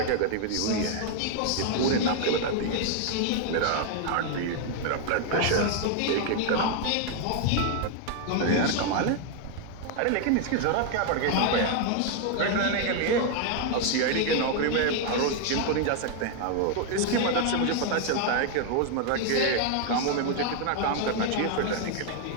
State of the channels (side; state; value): both; different; correlation 0.00